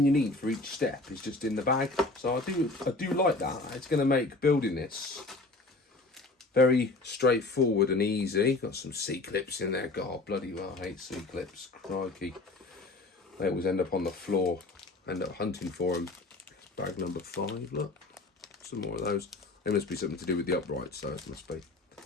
you need for each step is just in the bag. So I do like that. It's going to make building this very straightforward and easy. Got some C-clips in there. God, bloody well, I hate C-clips. Crikey. They always end up on the floor. End up hunting for them. Bag number 5, look. Some more of those. They must be something to do with the uprights, so it must be.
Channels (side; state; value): right; quieter; 3.2 dB